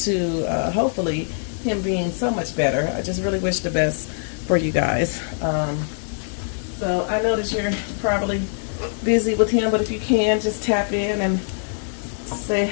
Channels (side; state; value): right; silent; digital silence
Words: hopefully him being so much better. I just really wish the best for you guys. So I know that you're probably busy with him, but if you can, just tap in and say